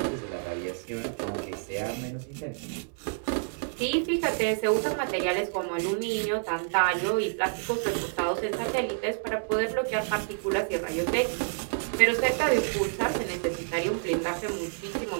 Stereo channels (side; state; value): left; silent; 59 dB below the other